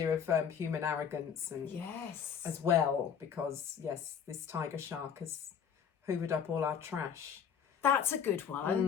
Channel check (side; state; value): right; quieter; 7.6 dB